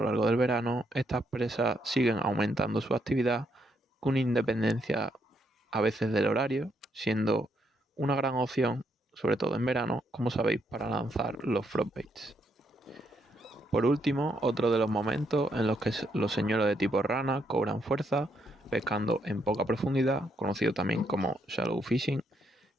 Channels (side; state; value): both; normal; correlation 0.76